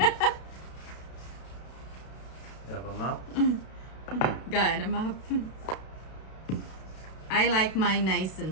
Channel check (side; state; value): right; late; 32 ms